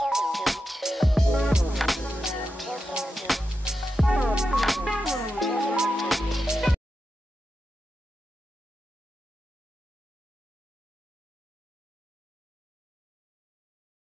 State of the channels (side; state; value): both; normal; correlation 0.89